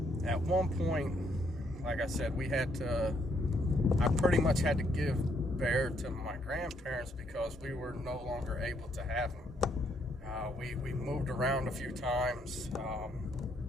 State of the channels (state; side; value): normal; both; correlation 0.72